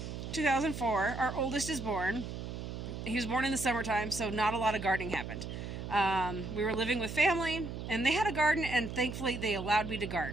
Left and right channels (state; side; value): noise; right; hum, 7 dB below the sound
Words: 2004, our oldest is born. He was born in the summertime, so not a lot of gardening happened. We were living with family, and they had a garden, and thankfully they allowed me to